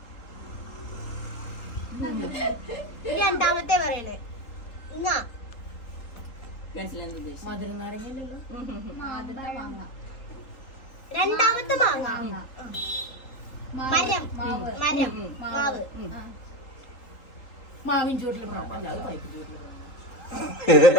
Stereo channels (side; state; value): right; late; 3.8 ms